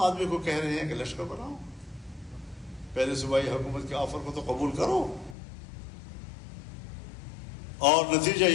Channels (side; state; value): right; drops out; at 5.4 s